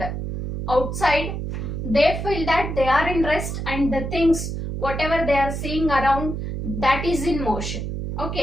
outside, they feel that they are in rest and the things, whatever they are seeing around, that is in motion.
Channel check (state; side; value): noise; right; hum, 4 dB below the sound